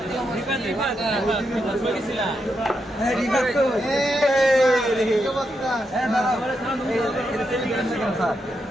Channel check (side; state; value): both; normal; correlation 0.83